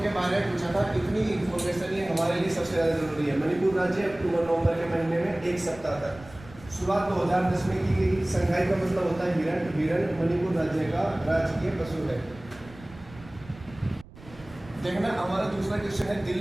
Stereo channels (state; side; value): noise; right; rumble, 20 dB below the sound